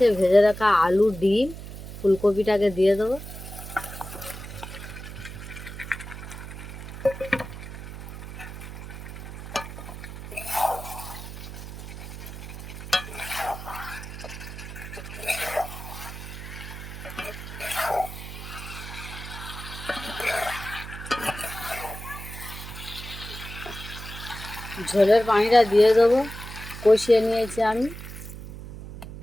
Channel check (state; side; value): noise; right; hum, 11 dB below the sound